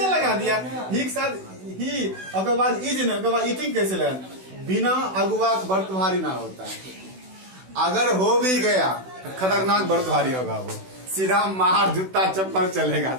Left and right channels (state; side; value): late; left; 16 ms